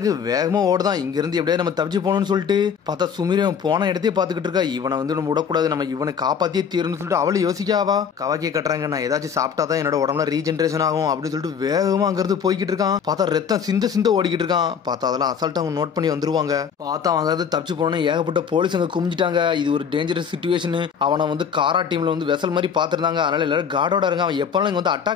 வேகமா ஓடுதான். இங்க இருந்து எப்படியா நம்ம தப்பிச்சு போகணும்னு சொல்லிட்டு பார்த்தா சுமிரம் போன இடத்தையே பாத்துக்கிட்டு இருக்கா. இவனை வந்து நம்ம விடக்கூடாது, நம்ம இவனை காப்பாத்தியே தீரணும்னு சொல்லிட்டு அவளை யோசிக்காவா. கவாக்கியா கட்டுறாங்க, நான் ஏதாச்சும் சாப்பிட்டாதான் என்னோட உடம்புல ரீஜென்ரேஷன் ஆகும் அப்படின்னு சொல்லிட்டு வேகமா அங்க இருந்து போய்கிட்டு இருக்கான். பார்த்தா ரத்தம் சிந்த ஓடிக்கிட்டு இருக்கான். பார்த்தா அதெல்லாம் அசால்ட்டா அவங்க நோட் பண்ணி வந்துருவாங்க. பார்த்தா அவங்க வந்து தப்பிச்சு போனோன்னு ஏகப்பட்ட போலீஸ் அங்க குமிஞ்சிட்டாங்க. இது ஒரு டேஞ்சரஸ் சிச்சுவேஷன். அவனை வந்து காரா டீம்ல வந்து வெசல் மாதிரி பாத்துருந்தாங்க. அதனால எல்லாரும் கார்டோட இருக்கான். எப்ப இங்க வந்து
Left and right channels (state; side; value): quieter; right; 7.1 dB